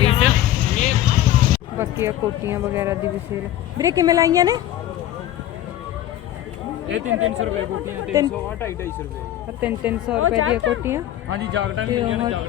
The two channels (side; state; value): right; quieter; 12.8 dB